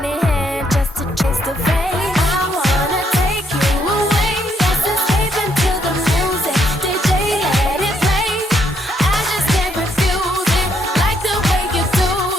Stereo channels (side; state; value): both; normal; correlation 0.73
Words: in hand just to chase the fame. I wanna take you away. Let's escape into the music. DJ, let it play. I just can't refuse it. Like the way you do